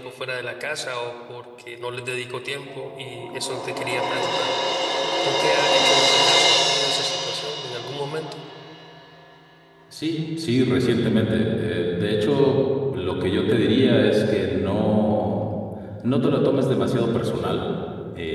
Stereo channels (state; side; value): identical; both; correlation 1.00